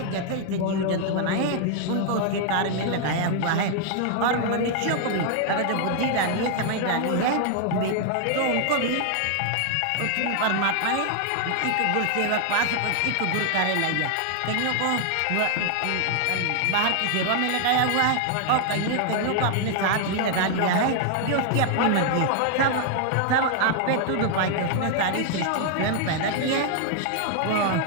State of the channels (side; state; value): both; different; correlation 0.00